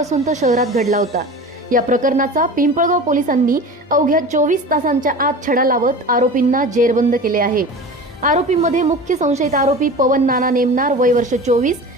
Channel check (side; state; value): both; normal; correlation 0.34